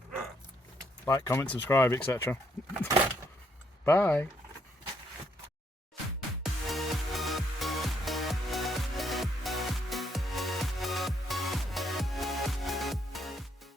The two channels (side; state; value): both; normal; correlation 0.73